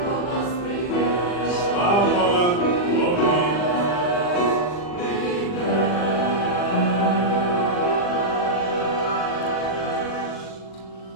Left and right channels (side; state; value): right; late; 40 ms